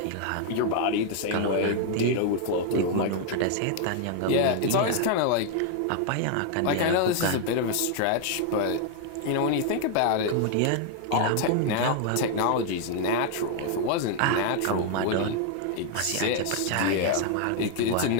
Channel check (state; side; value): different; both; correlation 0.00